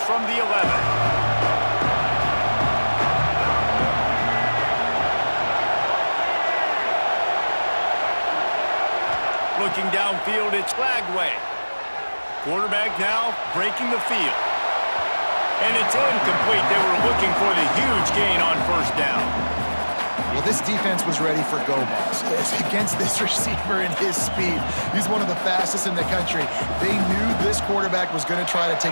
from the 11. Looking downfield, it's Flagway. Quarterback now breaking the field. And it's incomplete. They were looking for the huge gain on 1st down. Well, this defense was ready for go balls against this receiver and his speed. He's one of the fastest in the country. They knew this quarterback was going to try to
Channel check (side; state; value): both; inverted; correlation -1.00